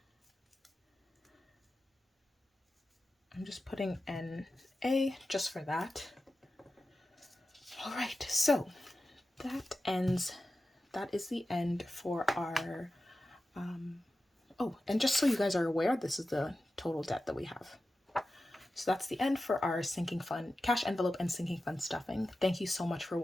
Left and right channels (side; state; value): both; normal; correlation 0.93